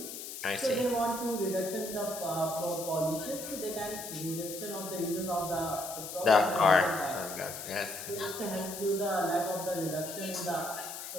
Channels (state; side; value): noise; left; hiss, 9 dB below the sound